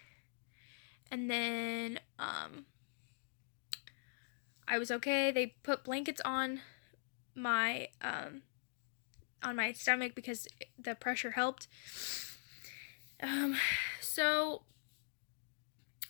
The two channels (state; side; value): silent; right; digital silence